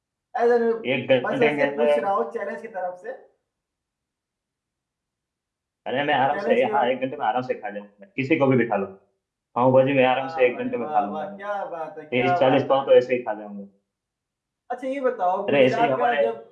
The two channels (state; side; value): identical; both; correlation 1.00